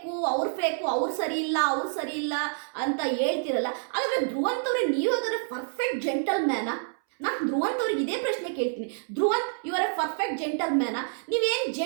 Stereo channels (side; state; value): left; silent; 60 dB below the other